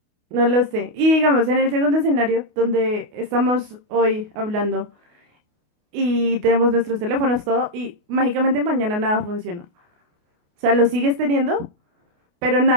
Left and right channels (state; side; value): late; left; 28 ms